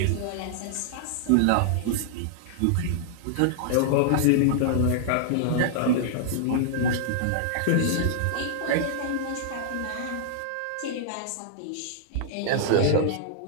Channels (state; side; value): different; both; correlation -0.01